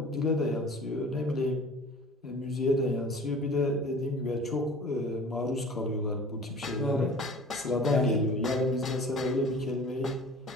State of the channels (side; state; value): both; normal; correlation 0.44